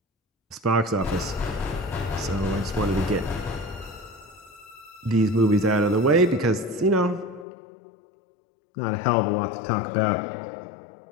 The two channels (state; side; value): drops out; right; at 7.5 s